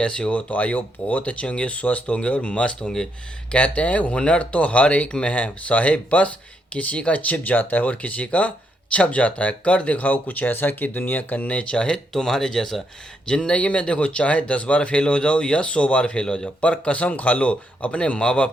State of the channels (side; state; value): both; normal; correlation 0.77